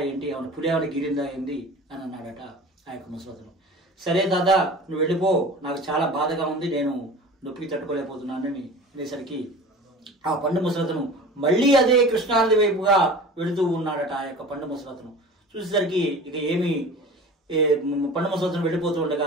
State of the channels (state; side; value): normal; both; correlation 0.38